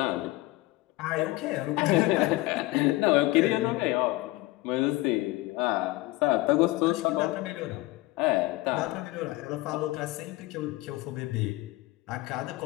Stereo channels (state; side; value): quieter; right; 19.5 dB